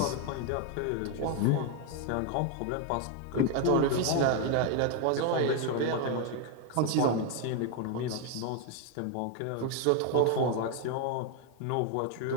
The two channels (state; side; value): different; both; correlation 0.01